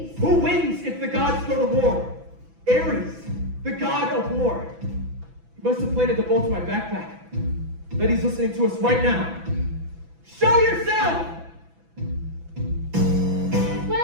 Who wins if the gods go to war? Ares, the god of war. He must have planted the bolt in my backpack. Bet he's listening to us right now. Show yourself!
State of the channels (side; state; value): left; late; 6.0 ms